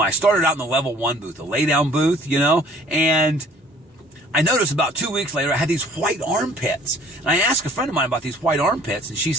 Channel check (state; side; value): normal; both; correlation 0.54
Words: I started out in the level 1 booth, a lay down booth, you know, and I noticed about 2 weeks later I had these white armpits. And I asked a friend of mine about these white armpits, and she